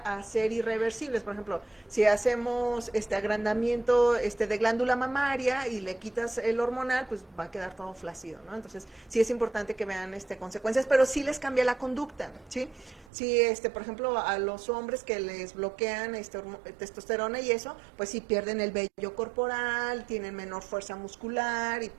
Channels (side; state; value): left; drops out; at 13.1 s